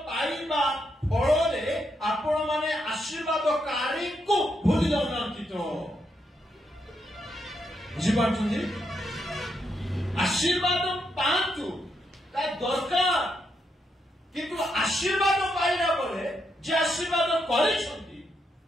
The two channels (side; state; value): both; normal; correlation 0.80